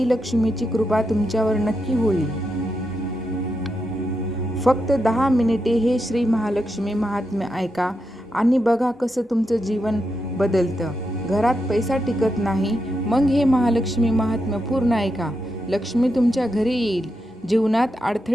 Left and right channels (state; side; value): normal; both; correlation 0.85